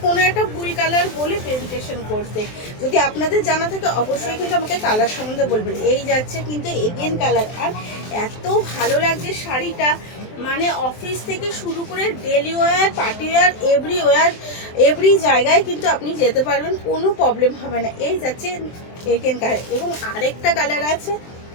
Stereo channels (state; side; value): late; right; 23 ms